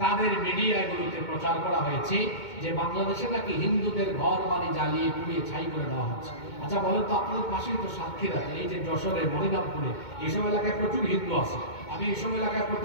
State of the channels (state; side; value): late; right; 2.2 ms